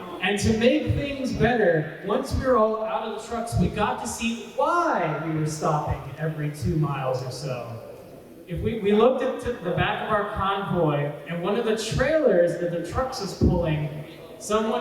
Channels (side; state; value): both; identical; correlation 1.00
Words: And to make things better, once we were all out of the trucks, we got to see why we were stopping every 2 miles or so. If we looked at the back of our convoy, and one of the trailers that the trucks was pulling,